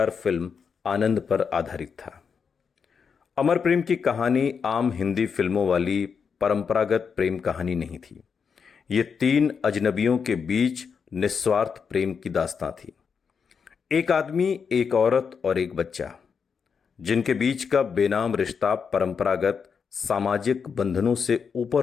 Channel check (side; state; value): right; quieter; 6.2 dB